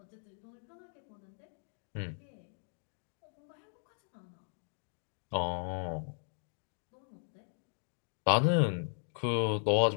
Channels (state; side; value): silent; right; digital silence